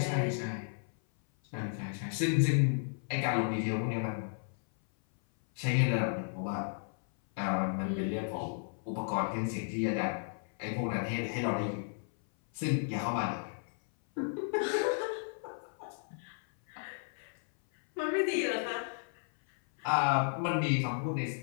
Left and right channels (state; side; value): silent; right; 55 dB below the other